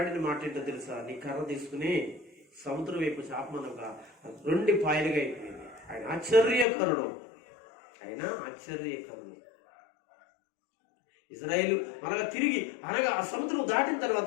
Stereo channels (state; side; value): drops out; right; at 6.7 s